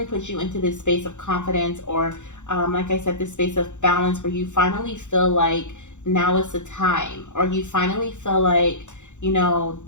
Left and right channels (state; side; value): late; right; 0.85 ms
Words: puts you into this space of confidence, or like I said, this space of balance, where you finally feel like now is the time, or you finally feel like, you know,